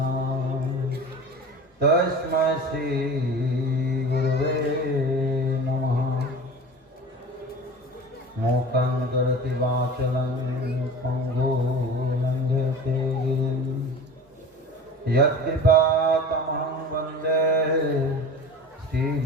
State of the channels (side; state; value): both; normal; correlation 0.36